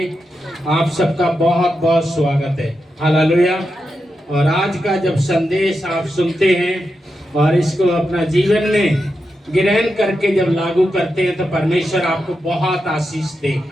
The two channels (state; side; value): normal; both; correlation 0.87